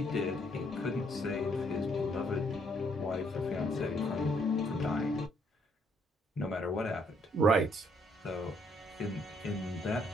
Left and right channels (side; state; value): both; normal; correlation 0.69